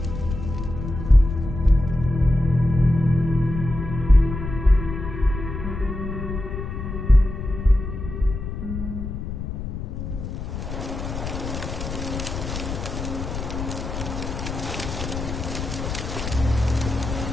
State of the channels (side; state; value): left; noise; rumble, 6 dB below the sound